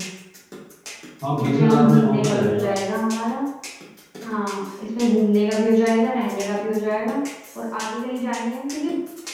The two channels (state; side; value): identical; both; correlation 1.00